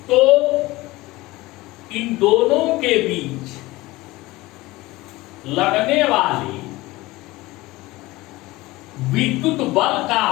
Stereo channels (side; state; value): right; quieter; 19.7 dB